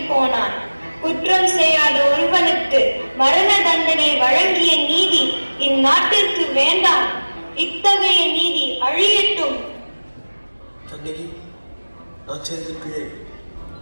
போனான். குற்றம் செய்யாத ஒருவனுக்கு மரண தண்டனை வழங்கிய நீதி இந்நாட்டிற்கு வேண்டாம். இத்தகைய நீதி அழியட்டும். கண்ணகி, நான் செய்த பிழை.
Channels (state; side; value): inverted; both; correlation -1.00